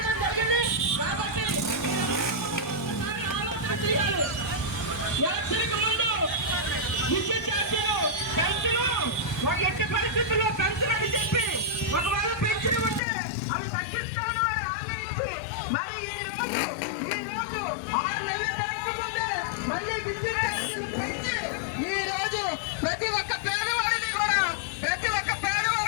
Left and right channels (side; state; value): right; drops out; at 13.0 s